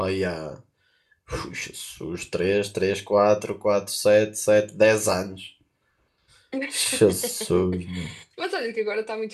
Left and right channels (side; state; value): both; identical; correlation 1.00